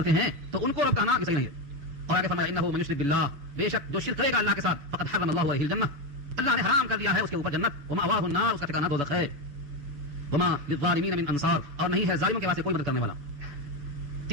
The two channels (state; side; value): late; left; 7.2 ms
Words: ہیں تو ان کو رب کہنا یہ صحیح نہیں ہے. اور آگے فرمایا انہ من یشرک باللہ, بے شک جو شرک کرے گا اللہ کے ساتھ, فقد حرم اللہ علیہ الجنہ, اللہ نے حرام کر دیا ہے اس کے اوپر جنت. ومأواہ النار, اس کا ٹھکانہ دوزخ ہے. وما للظالمین من انصار, اور نہیں ہے ظالموں کے واسطے کوئی مدد کرنے والا.